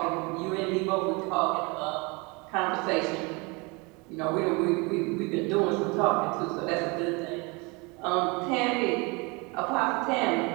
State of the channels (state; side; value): quieter; left; 28.1 dB